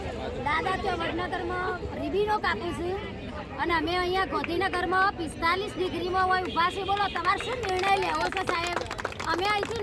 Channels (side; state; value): both; identical; correlation 1.00